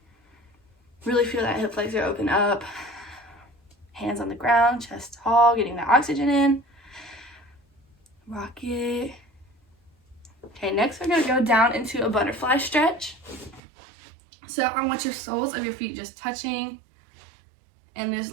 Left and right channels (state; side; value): drops out; left; at 13.6 s